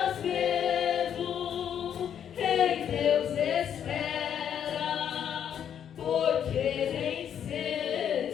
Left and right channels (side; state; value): right; quieter; 9.0 dB